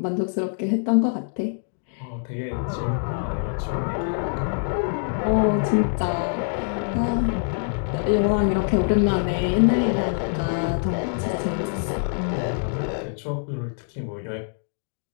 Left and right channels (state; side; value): silent; right; digital silence